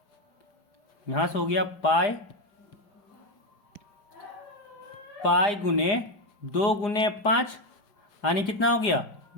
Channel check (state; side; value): late; right; 5.1 ms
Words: यहाँ से हो गया पाई गुने 2 गुने 5 यानी कितना हो गया